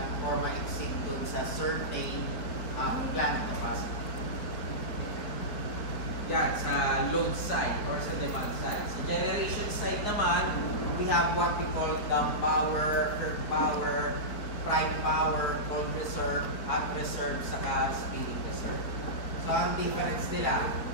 or ma-exceed dun sa certain plant capacity. Yan, sa load side or sa demand side. Sa generation side naman, we have what we call dump power, curve power, prime power, cold reserve, hot reserve, saka speeding reserve. So, ang difference nila,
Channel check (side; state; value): right; late; 4.6 ms